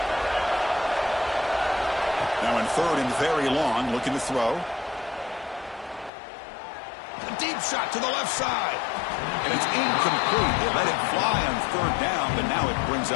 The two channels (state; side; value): drops out; right; at 6.1 s